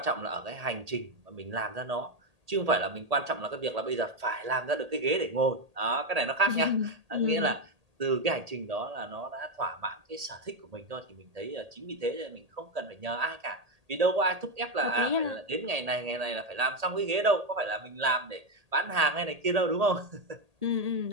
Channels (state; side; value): late; left; 1.8 ms